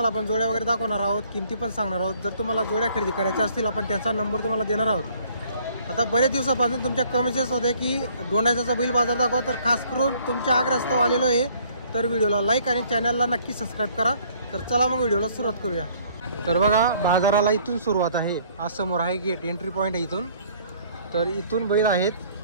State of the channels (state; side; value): inverted; both; correlation -0.60